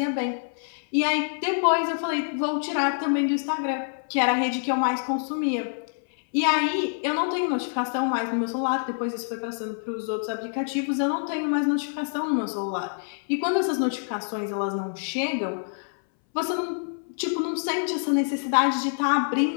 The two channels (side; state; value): right; silent; 61 dB below the other